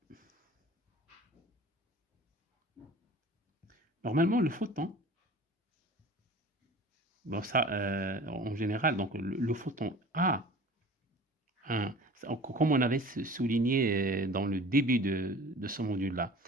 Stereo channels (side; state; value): both; normal; correlation 0.42